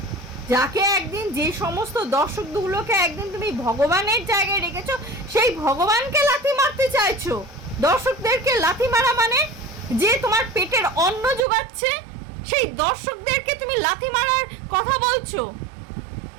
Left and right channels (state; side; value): drops out; left; at 11.4 s